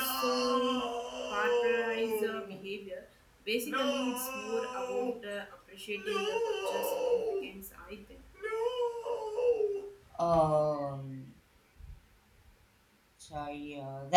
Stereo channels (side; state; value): both; identical; correlation 1.00